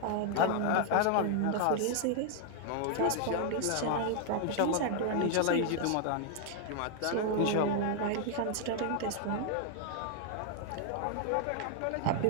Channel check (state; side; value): different; both; correlation 0.00